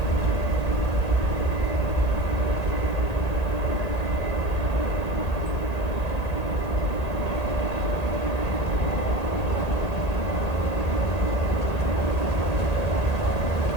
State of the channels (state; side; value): late; right; 1.8 ms